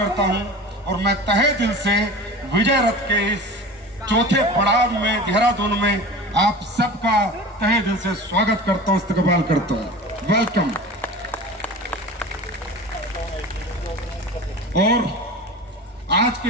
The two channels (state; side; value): normal; both; correlation 0.35